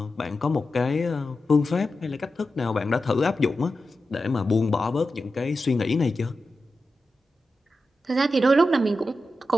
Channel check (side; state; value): both; normal; correlation 0.91